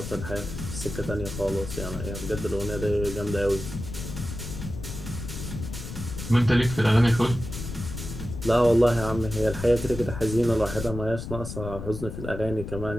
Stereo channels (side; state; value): left; noise; rumble, 8 dB below the sound